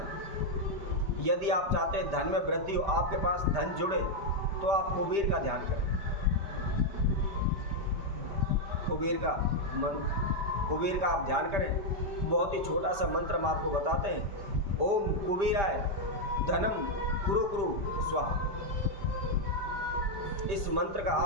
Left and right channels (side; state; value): left; late; 5.0 ms